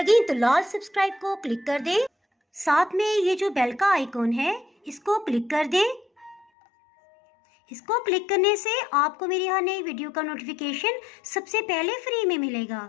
तो लाल सब्सक्राइब को क्लिक कर दें। साथ में ये जो बेल का आइकॉन है इसको क्लिक कर दें। इसको क्लिक करने से आपको मेरी हर नई वीडियो का नोटिफिकेशन सबसे पहले फ्री में मिलेगा।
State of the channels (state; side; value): drops out; right; at 6.5 s